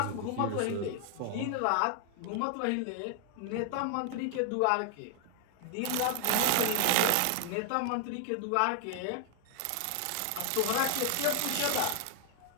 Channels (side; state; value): both; different; correlation 0.00